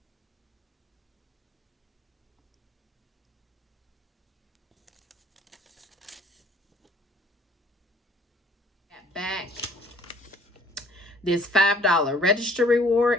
back this $5 register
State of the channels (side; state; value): both; normal; correlation 0.56